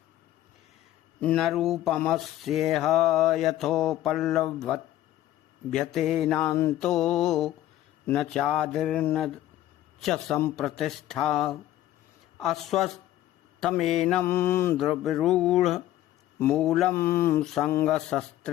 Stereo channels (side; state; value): right; quieter; 13.7 dB